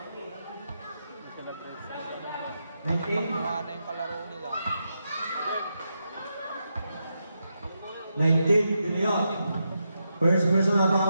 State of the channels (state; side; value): inverted; both; correlation -0.85